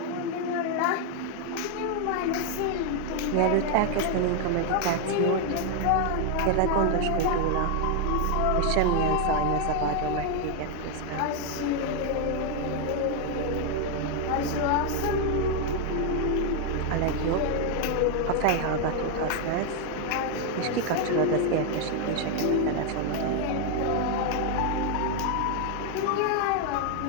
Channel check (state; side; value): different; both; correlation 0.00